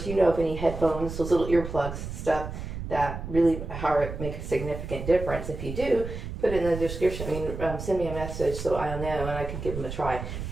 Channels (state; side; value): noise; right; rumble, 7 dB below the sound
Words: of any headphones, those little earplugs, stuff that really make a significant difference. If you do, put it in the description. Send me a message so I'll know, and I can give them a try.